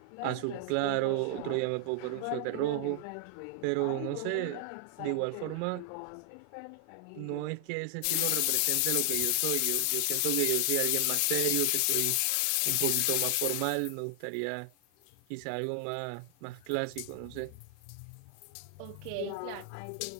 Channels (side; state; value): both; different; correlation 0.00